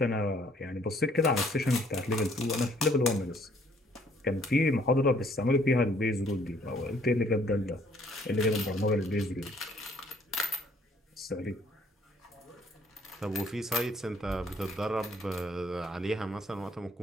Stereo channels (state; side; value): normal; both; correlation 0.62